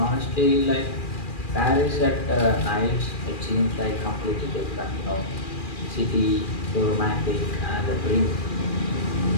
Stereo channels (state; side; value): late; right; 2.4 ms